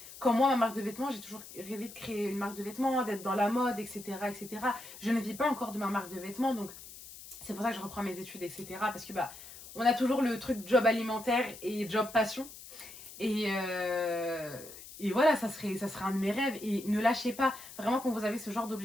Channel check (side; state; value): left; noise; hiss, 15 dB below the sound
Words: comme moi ma marque de vêtements, j'ai toujours rêvé de créer une marque de vêtements, d'être dans la mode, etc., etc. Je ne vis pas encore de ma marque de vêtements, donc c'est pour ça que je reprends mes études, etc. Parce que on a toujours le truc job alimentaire et job passion. Et, et voilà, ça serait un de mes rêves. Et ne lâchez pas, vraiment quand vous avez ce genre